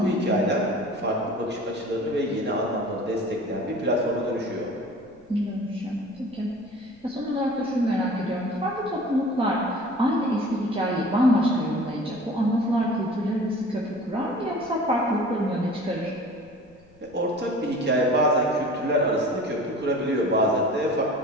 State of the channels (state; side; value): noise; left; rumble, 29 dB below the sound